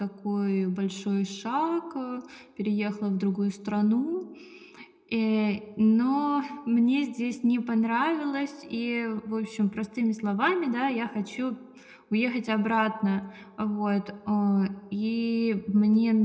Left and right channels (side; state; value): both; identical; correlation 1.00